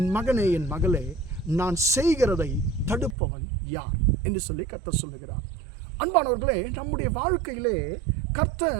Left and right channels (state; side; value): drops out; left; at 3.2 s